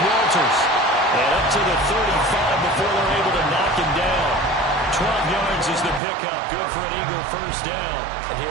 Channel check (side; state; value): left; drops out; at 6.0 s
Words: And up to the 35 before they're able to knock him down. 12 yards is the pickup. Good for an Eagle 1st down. And